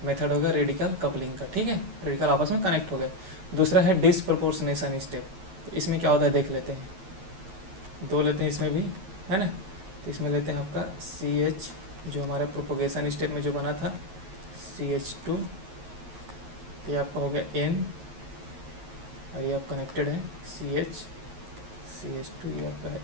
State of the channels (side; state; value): left; late; 10 ms